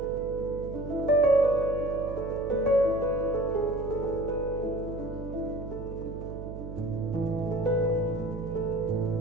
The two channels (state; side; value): noise; right; hum, 9 dB below the sound